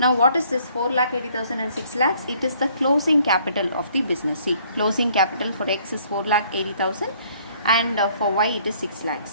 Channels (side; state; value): both; inverted; correlation -0.62